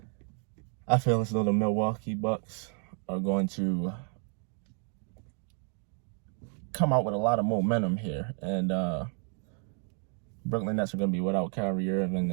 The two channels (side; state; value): left; quieter; 39.7 dB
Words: I feel as though the Milwaukee Bucks are going to come out with a lot of momentum here. And Brooklyn Nets are going to be without Kyrie Irving.